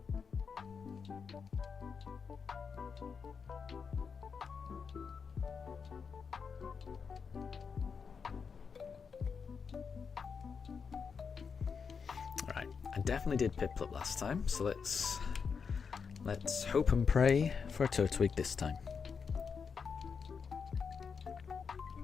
Right, I definitely did Piplup last time, so let's hope and pray for a Turtwig this time.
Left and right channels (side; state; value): right; quieter; 5.9 dB